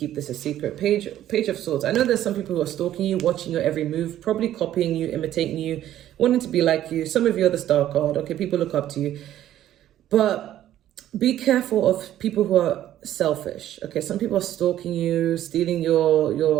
this a secret. Page of Swords. I know there's some people who are stalking you, watching your every move, probably copying you, imitating you, wanting to be like you. Some of you are the star card. Okay, people look up to you. But be careful of people who are selfish. Okay, some people are stalking you, stealing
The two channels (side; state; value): left; quieter; 12.4 dB